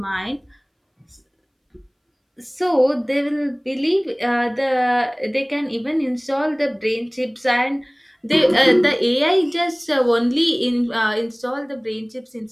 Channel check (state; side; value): identical; both; correlation 1.00